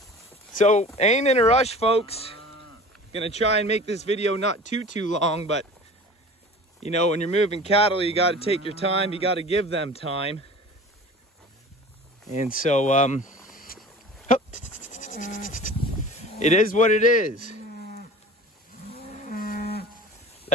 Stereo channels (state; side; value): normal; both; correlation 0.40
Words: So ain't in a rush, folks. Gonna try and make this video not too long, but you know, when you're moving cattle, you gotta take your time, you gotta give them time. And so it is what it is.